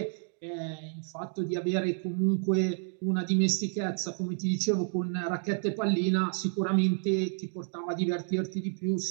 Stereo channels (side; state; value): left; silent; 57 dB below the other